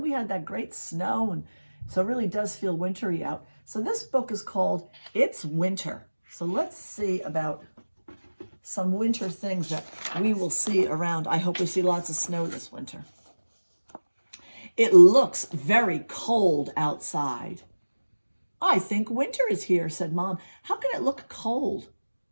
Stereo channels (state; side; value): inverted; both; correlation -1.00